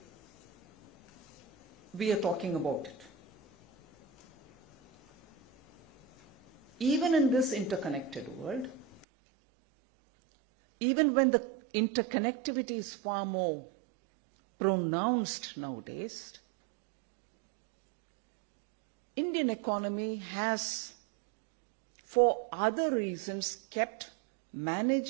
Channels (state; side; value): drops out; left; at 9.1 s